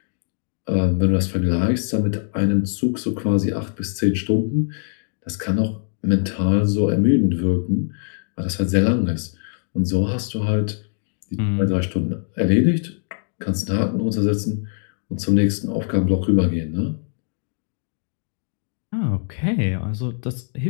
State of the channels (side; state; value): right; silent; 64 dB below the other